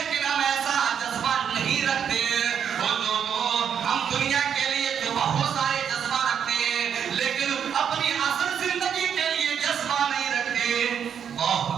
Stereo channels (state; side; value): quieter; left; 8.0 dB